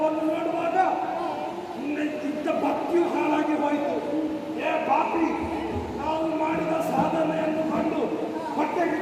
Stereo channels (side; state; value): both; identical; correlation 1.00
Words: ನೋಡುವಾಗ ನಿನ್ನ ಭಕ್ತಿಯು ಹಾಳಾಗಿ ಹೋಯಿತು. ಪಾಪಿ, ನಾವು ಮಾಡಿದ ಸಾಧನೆಯನ್ನು ಕಂಡು